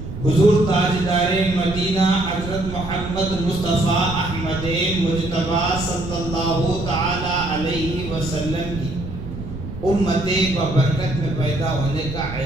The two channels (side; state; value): right; noise; rumble, 9 dB below the sound